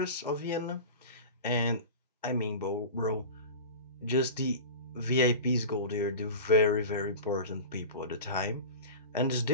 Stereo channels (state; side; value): inverted; both; correlation -0.31